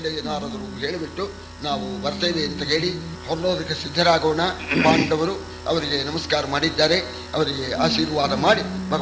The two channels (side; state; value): both; identical; correlation 1.00